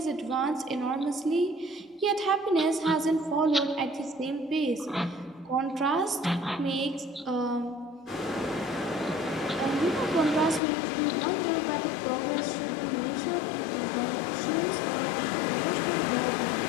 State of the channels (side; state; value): right; drops out; at 10.6 s